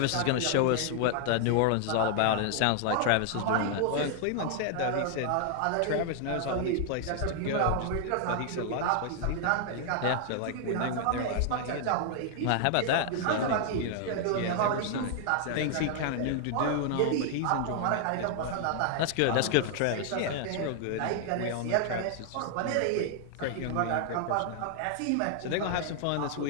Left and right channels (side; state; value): both; different; correlation 0.00